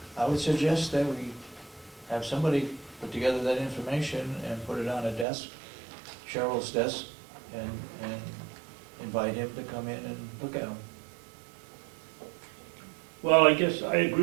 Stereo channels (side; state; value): left; drops out; at 5.2 s